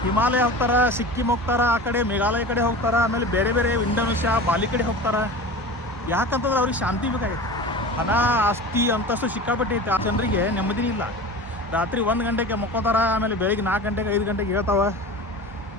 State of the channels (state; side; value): normal; both; correlation 0.33